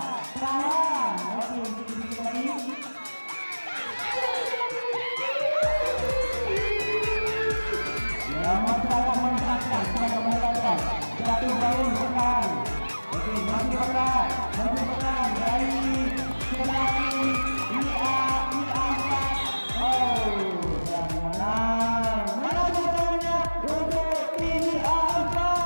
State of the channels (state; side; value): inverted; both; correlation -1.00